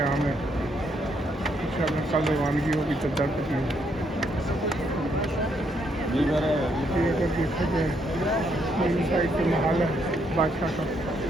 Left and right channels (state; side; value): normal; both; correlation 0.74